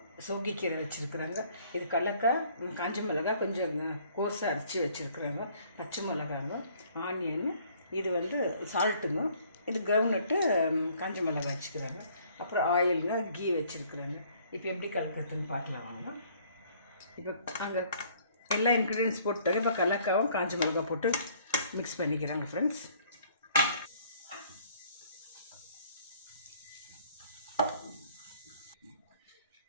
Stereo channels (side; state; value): both; inverted; correlation -0.60